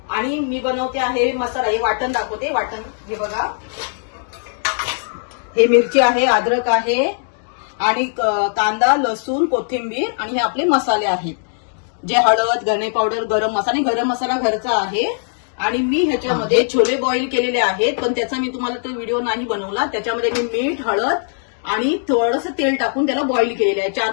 आणि मी बनवते आहे मसाला. हे वाटण दाखवते. वाटण हे बघा, हे मिरची आहे, अद्रक आहे आणि कांदा, लसूण, कोथिंबीर आणि हे आपले मसाले आहेत, जे हळद, धणे पावडर, गरम मसाला घरचा आहे. आणि मी ह्याच्यामध्ये छोले बॉईल केलेले आहेत, पण त्याचा मी तुम्हाला तो व्हिडिओ नाही बनवला. त्याच्यामध्ये मी मीठ, हळद आणि थोडंसं तेल टाकून त्याला बॉईल केलेलं आहे.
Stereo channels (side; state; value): right; silent; digital silence